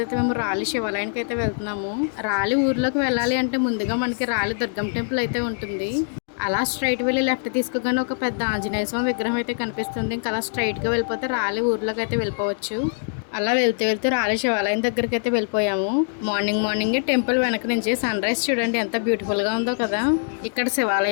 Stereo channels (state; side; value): silent; right; digital silence